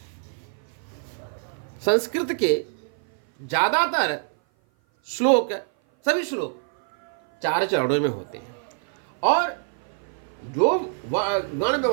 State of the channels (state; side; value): silent; left; 56 dB below the other